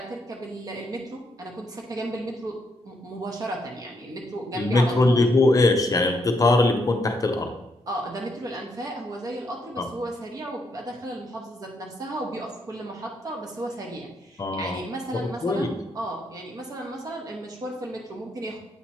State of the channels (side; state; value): both; normal; correlation 0.76